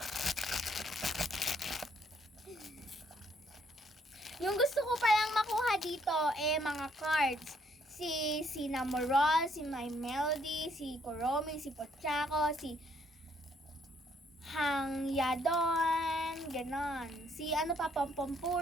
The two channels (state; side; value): normal; both; correlation 0.69